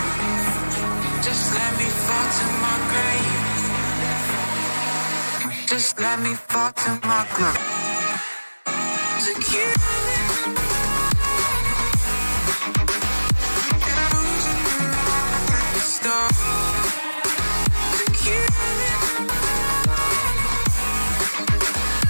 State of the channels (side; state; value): both; inverted; correlation -1.00